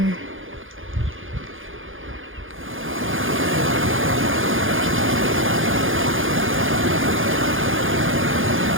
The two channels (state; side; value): late; left; 0.58 ms